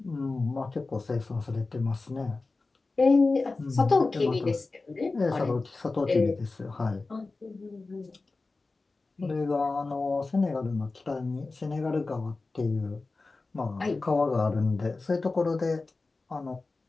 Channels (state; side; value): quieter; right; 3.6 dB